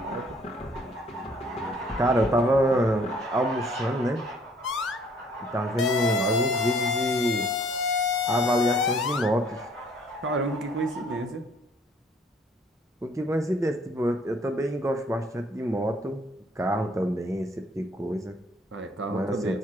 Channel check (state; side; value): normal; both; correlation 0.59